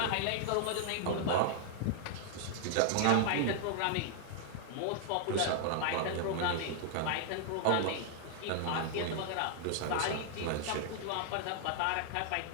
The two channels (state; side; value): different; both; correlation -0.01